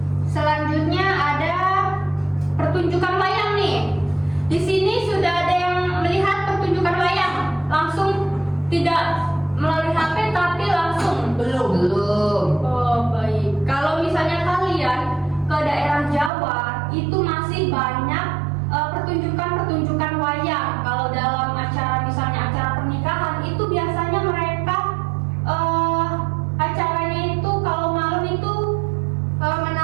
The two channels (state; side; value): drops out; left; at 16.3 s